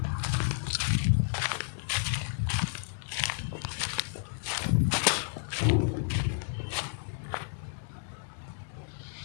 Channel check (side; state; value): right; silent; digital silence